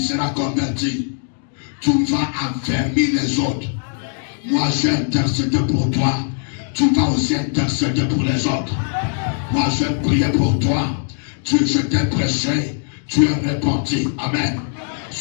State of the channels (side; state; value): right; silent; 66 dB below the other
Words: converti, tu vas affermir les autres. Moi, j'ai intercédé pour toi. Tu vas aussi intercéder pour les autres. Moi, j'ai prié pour toi. Je t'ai prêché. Tu es répandu. Amen.